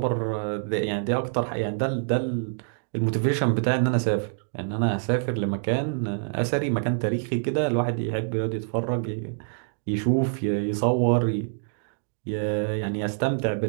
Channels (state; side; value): silent; left; digital silence